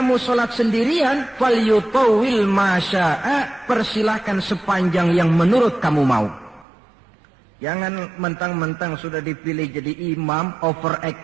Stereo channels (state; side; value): drops out; left; at 6.7 s